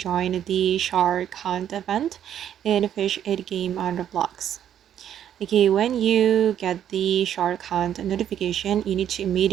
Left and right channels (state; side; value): quieter; left; 10.1 dB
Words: the shark hunt event in Fish 8 game on Roblox. Okay, when you get the shark hunt notification, you need to